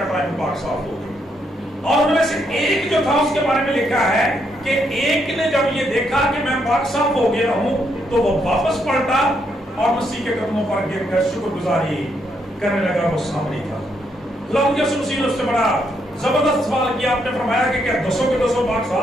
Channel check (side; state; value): both; normal; correlation 0.76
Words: ٹائم پاک صاف ہو گئی. اور ان میں سے ایک جو تھا اس کے بارے میں لکھا ہے کہ ایک نے جب یہ دیکھا کہ میں پاک صاف ہو گیا ہوں تو وہ واپس پلٹا اور مسیح کے قدموں پر گر کر شکر گزاری کرنے لگا. وہ سامنے تھا. خداوند یسوع مسیح نے اس سے بڑا زبردست سوال کیا. آپ نے فرمایا کہ کیا 10 کے 10 پاک